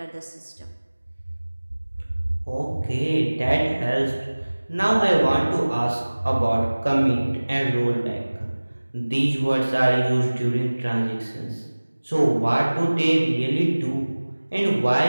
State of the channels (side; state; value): both; inverted; correlation -1.00